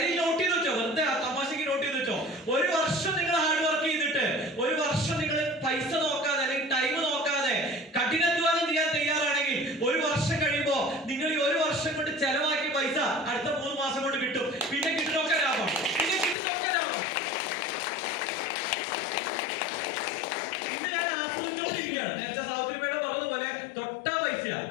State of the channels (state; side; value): drops out; right; at 16.4 s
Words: നോട്ട് ചെയ്ത് വെച്ചോ, വെറുതെ തമാശക്ക് നോട്ട് ചെയ്ത് വെച്ചോ. ഒരു വർഷം നിങ്ങൾ ഹാർഡ് വർക്ക് ചെയ്തിട്ട്, ഒരു വർഷം നിങ്ങൾ പൈസ നോക്കാതെ അല്ലെങ്കിൽ ടൈം നോക്കാതെ കഠിനാധ്വാനം ചെയ്യാൻ തയ്യാറാണെങ്കിൽ, ഒരു വർഷം കഴിയുമ്പോ നിങ്ങൾ ഈ ഒരു വർഷം കൊണ്ട് ചെലവാക്കിയ പൈസ അടുത്ത 3 മാസം കൊണ്ട് കിട്ടും. പിന്നെ കിട്ടുന്നൊക്കെ ലാഭം, പിന്നെ കിട്ടുന്നൊക്കെ ലാഭം. നേരത്തെ സാവിത്രിമേടെ പറഞ്ഞതുപോലെ തൊട്ടാ പൈസയാണ്,